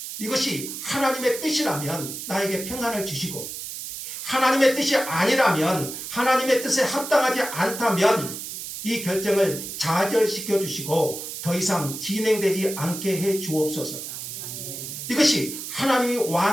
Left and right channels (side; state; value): right; noise; hiss, 8 dB below the sound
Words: 이것이 하나님의 뜻이라면 나에게 평안을 주시고, 하나님의 뜻이 아니라면, 하나님의 뜻에 합당하지 않다면 이 결정을 좌절시켜 주시고 더 이상 진행되지 않게 해 주옵소서. 이것이 하나님이